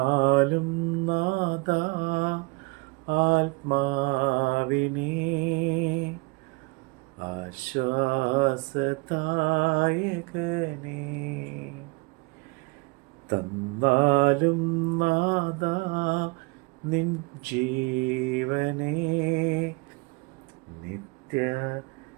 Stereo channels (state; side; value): quieter; left; 27.9 dB